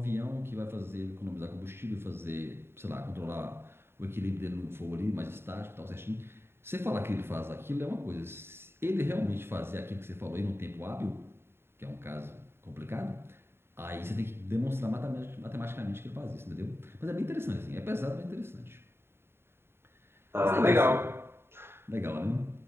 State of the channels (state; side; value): late; left; 0.11 ms